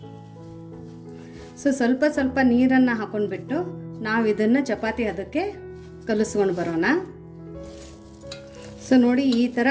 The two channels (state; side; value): identical; both; correlation 1.00